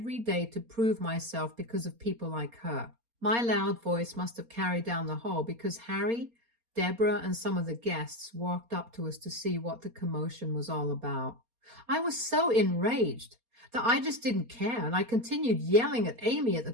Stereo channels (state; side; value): late; left; 4.3 ms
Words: day to prove myself because of people like her. My loud voice must have carried down the hall because Harry, Deborah, and some of the guests walked up to us to see what the commotion was all about. I was so enraged that I just didn't care, and I continued yelling at Amy at the